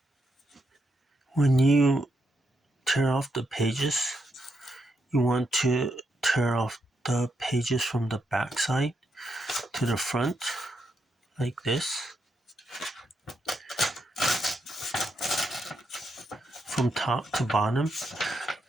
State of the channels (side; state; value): both; normal; correlation 0.81